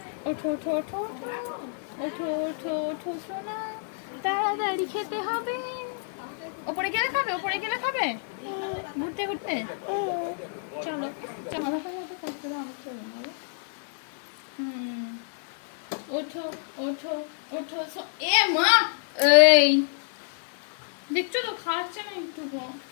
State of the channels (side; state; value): right; silent; 59 dB below the other